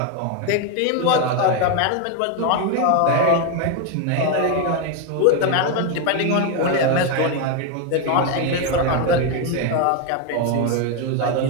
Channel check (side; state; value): both; different; correlation 0.02